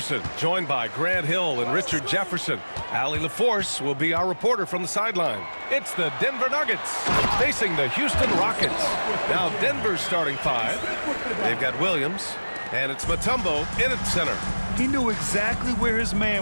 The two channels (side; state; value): both; inverted; correlation -1.00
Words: joined by Grant Hill and Richard Jefferson. Allie LaForce will be our reporter from the sideline. It's the Denver Nuggets facing the Houston Rockets. Now Denver's starting five. They've got Williams, and it's Mutombo in at center. He knew exactly where his